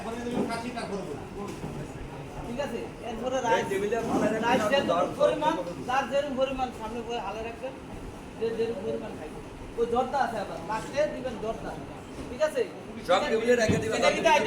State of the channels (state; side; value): identical; both; correlation 1.00